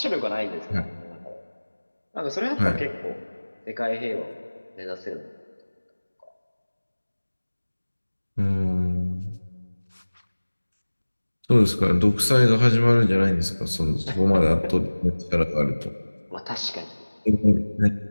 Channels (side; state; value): both; inverted; correlation -1.00